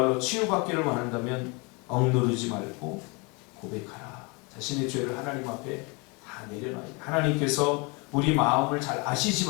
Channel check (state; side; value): quieter; right; 29.6 dB